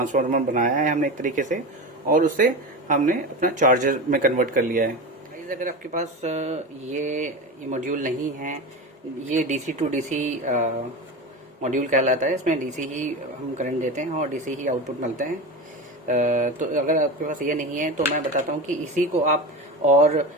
बनाया है हमने एक तरीके से, और उससे हमने अपना चार्जर में कन्वर्ट कर लिया है। गाइस, अगर आपके पास ये मॉड्यूल नहीं है, ये डीसी टू डीसी मॉड्यूल कहलाता है। इसमें डीसी ही हम करंट देते हैं और डीसी ही आउटपुट मिलते हैं। तो अगर आपके पास ये नहीं है तो मैं बताता हूँ कि इसी को आप, और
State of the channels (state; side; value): normal; both; correlation 0.24